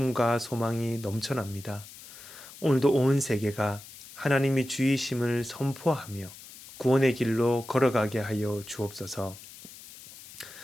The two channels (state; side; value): noise; left; hiss, 17 dB below the sound